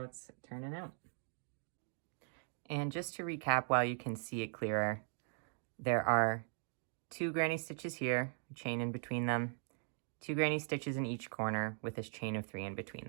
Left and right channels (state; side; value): silent; left; 51 dB below the other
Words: it's turning out. And just to recap, while you can see it clearer, there are 2 granny stitches here, chain in between them, 2 granny stitches in each corner with this chain of 3 in between